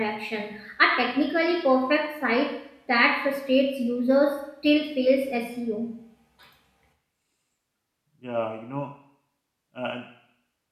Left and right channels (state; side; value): identical; both; correlation 1.00